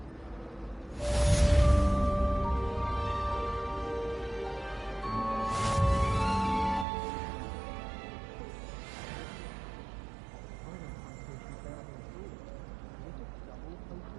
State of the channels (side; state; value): left; drops out; at 6.9 s